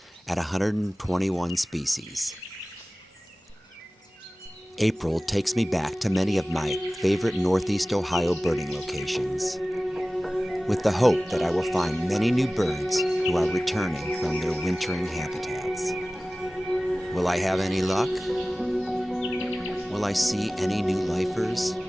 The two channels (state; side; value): normal; both; correlation 0.97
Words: at 121 species. April takes me back to many of my favorite Northeast Ohio birding locations, with the hope that I will find many new birds who are returning from their wintering habitats. Will I have any luck? Will I see any new lifers?